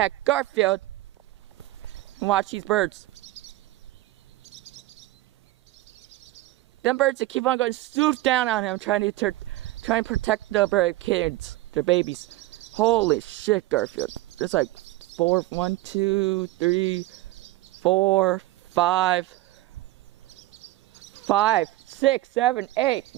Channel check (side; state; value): left; quieter; 17.5 dB